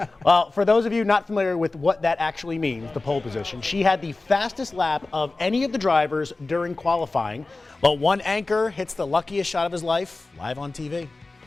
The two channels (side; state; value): right; quieter; 3.4 dB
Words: am. Well, for those of you not familiar with what that actually means, the pole position, she had the fastest lap of any of the drivers during qualifying. But one anchor hits the luckiest shot of his life live on TV.